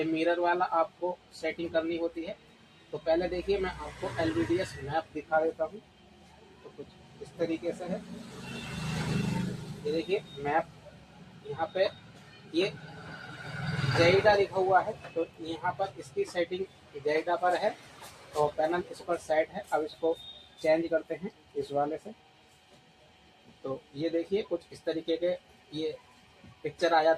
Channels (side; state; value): both; identical; correlation 1.00